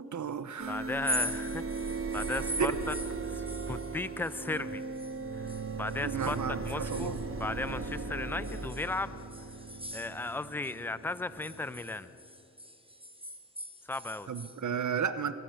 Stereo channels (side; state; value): both; normal; correlation 0.29